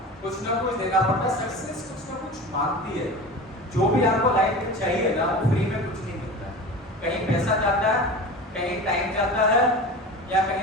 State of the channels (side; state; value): both; normal; correlation 0.33